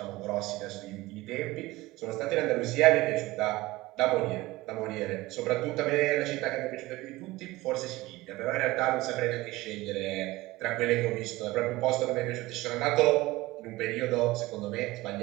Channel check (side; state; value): left; quieter; 19.4 dB